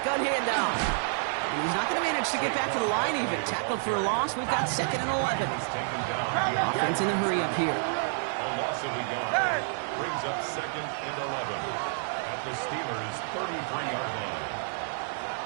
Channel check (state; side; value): silent; left; 57 dB below the other